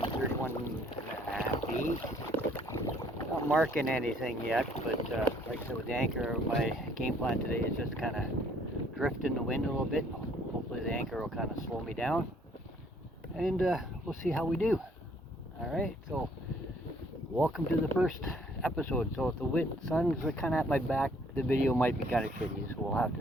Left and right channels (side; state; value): both; normal; correlation 0.62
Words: feet. Not marking anything yet, but like I said, with the anchor, my game plan today is just kind of drift in the wind a little bit. Hopefully the anchor will kind of slow me down, and we'll see how we do. Alright, so welcome to the first episode. So if the sun's kind of at my back, the video might be kind of shitty, so we'll have